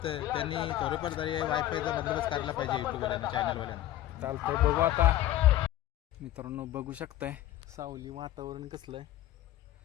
त्यांनी थोडेफार तरी वायफायचा बंदोबस्त करायला पाहिजे यूट्यूबवाल्यांना, चॅनलवाल्यांना। चालतंय, बघू आता मित्रांनो। बघू शकताय सावली वातावरण कसलं आहे,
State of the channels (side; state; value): right; quieter; 13.9 dB